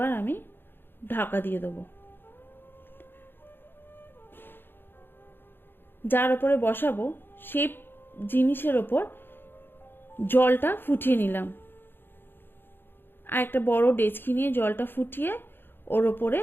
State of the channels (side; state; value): right; late; 0.10 ms